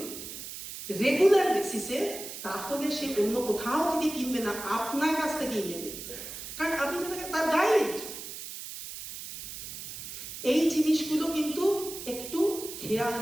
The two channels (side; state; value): right; noise; hiss, 10 dB below the sound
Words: রেগুলার বেসিসে, তাহলে সে অন্য কোথাও থেকে কিনবে না, আপনার কাছ থেকেই নেবে, কারণ আপনি তার গাইড। এই জিনিসগুলো কিন্তু একটু খেয়াল